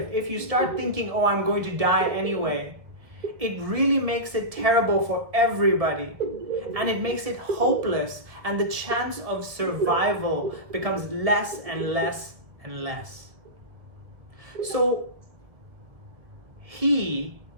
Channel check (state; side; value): late; left; 1.4 ms